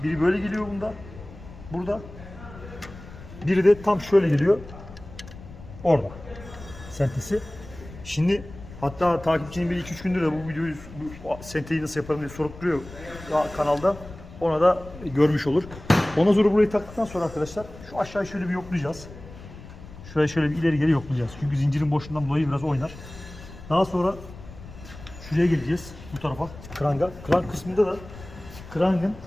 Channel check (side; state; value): left; noise; rumble, 16 dB below the sound